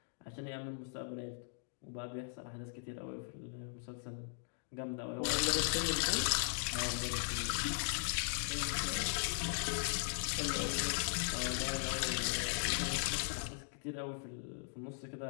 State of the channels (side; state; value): right; silent; digital silence